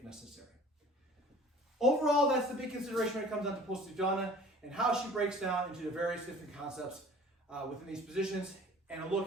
necessary. Overall, that's the big consideration when it comes down to Posta di Donna and how she breaks down into the various different concepts within these positions and a look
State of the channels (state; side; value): normal; both; correlation 0.47